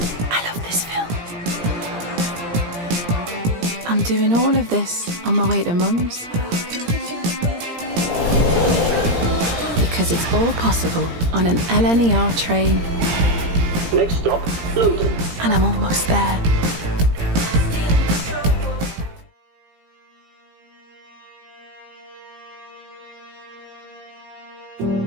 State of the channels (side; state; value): left; late; 17 ms